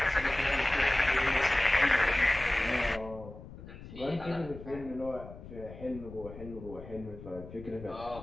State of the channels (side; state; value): left; noise; rumble, 15 dB below the sound